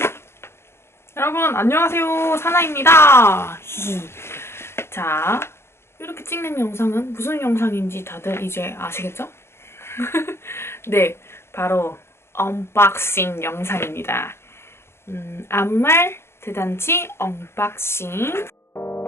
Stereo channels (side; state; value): right; late; 0.12 ms